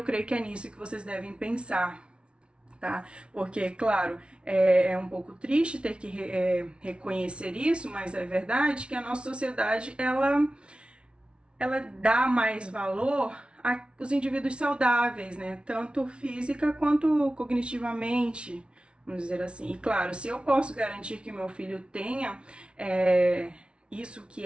creio que é nisso que vocês devem pensar. Tá? Porque, claro, é um pouco triste ter que reconhecer isso, mas é verdade que a nossa sociedade, ela dá mais valor os indivíduos saudáveis, né? Tanto física quanto cognitivamente, vamos dizer assim. E claro, se eu posso garantir que meu filho tenha isso que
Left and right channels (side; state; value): left; late; 0.058 ms